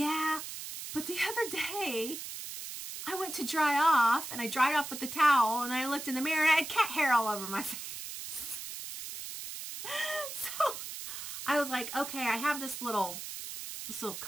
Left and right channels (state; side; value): noise; right; hiss, 8 dB below the sound